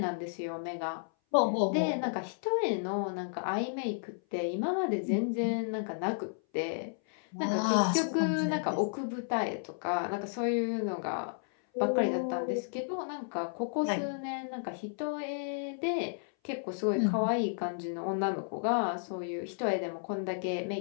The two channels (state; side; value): silent; right; 56 dB below the other